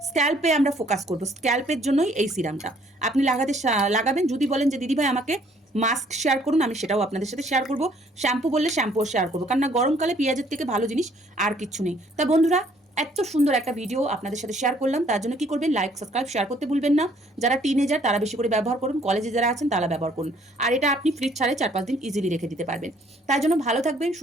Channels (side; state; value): both; normal; correlation 0.62